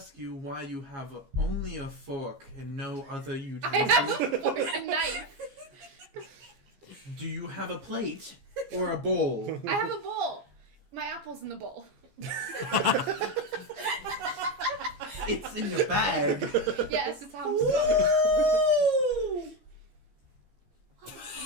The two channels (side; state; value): left; late; 15 ms